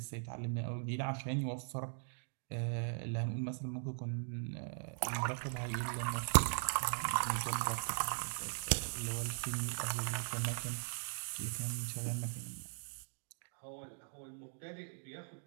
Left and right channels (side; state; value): left; silent; 51 dB below the other